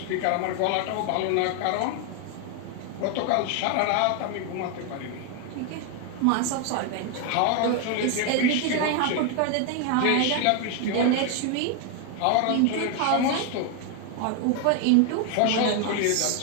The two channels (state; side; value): different; both; correlation 0.01